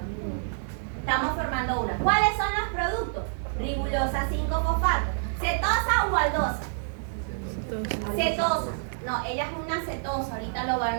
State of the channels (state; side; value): silent; left; 60 dB below the other